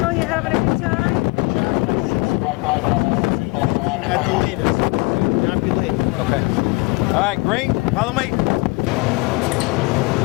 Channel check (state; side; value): quieter; right; 26.0 dB